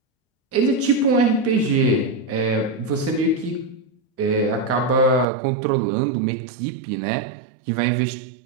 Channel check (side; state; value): left; drops out; at 5.2 s